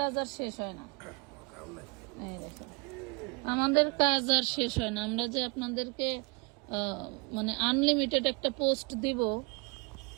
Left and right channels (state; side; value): quieter; left; 30.3 dB